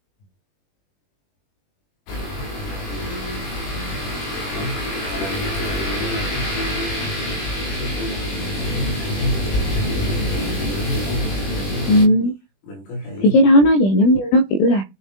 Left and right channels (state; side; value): late; right; 20 ms